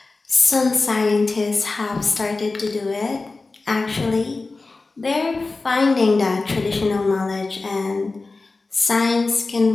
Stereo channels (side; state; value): right; quieter; 3.6 dB